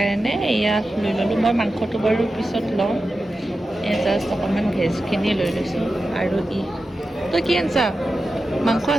এয়া লৈ ল'লোঁ মই মাংসটো বাৰু পিছত লওঁ জাষ্ট অকণমান ভেজখিনি লৈ লৈছোঁ আৰু তই কি আনছা মাংস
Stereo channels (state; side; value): normal; both; correlation 0.92